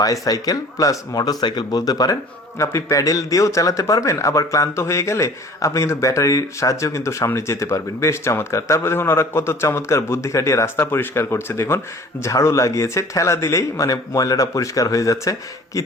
প্লাস মোটর সাইকেল বলতে পারেন। আপনি প্যাডেল দিয়েও চালাতে পারবেন, আবার ক্লান্ত হয়ে গেলে আপনি কিন্তু ব্যাটারির সাহায্যেও কিন্তু সামনে যেতে পারবেন। বেশ চমৎকার। তারপরে দেখুন ওরা কত চমৎকার বুদ্ধি খাটিয়ে রাস্তা পরিষ্কার করছে দেখুন। ঝাড়ু লাগিয়েছে, ঠেলা দিলেই মানে ময়লাটা পরিষ্কার হয়ে যাচ্ছে। কি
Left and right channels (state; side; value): normal; both; correlation 0.47